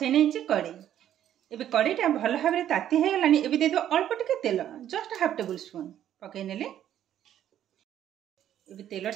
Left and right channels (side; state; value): left; quieter; 11.0 dB